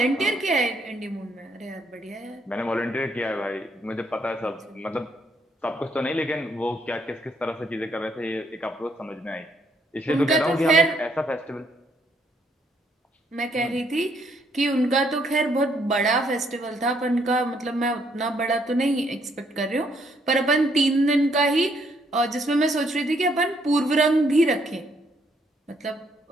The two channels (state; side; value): normal; both; correlation 0.70